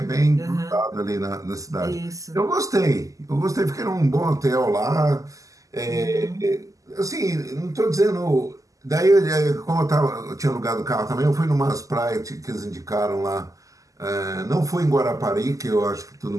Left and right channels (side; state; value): left; late; 0.16 ms